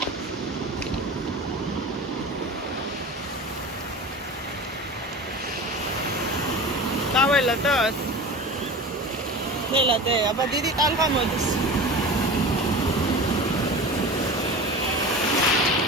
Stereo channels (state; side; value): normal; both; correlation 0.33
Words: Ladat. Nela de, აბა დიდი ტალღა მოდის.